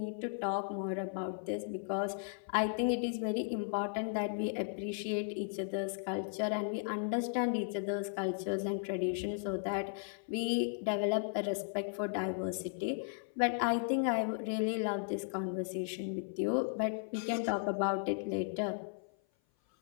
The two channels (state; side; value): silent; right; 54 dB below the other